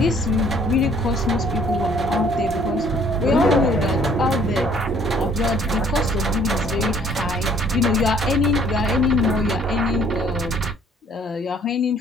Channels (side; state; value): both; normal; correlation 0.59